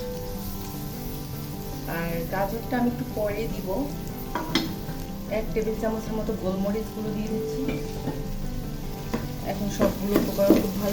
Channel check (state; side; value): identical; both; correlation 1.00